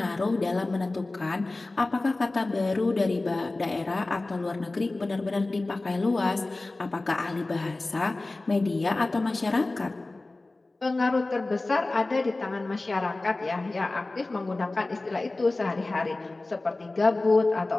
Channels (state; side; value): quieter; right; 3.1 dB